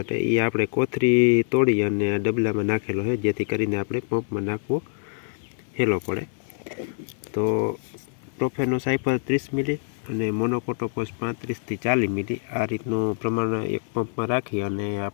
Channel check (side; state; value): right; silent; 62 dB below the other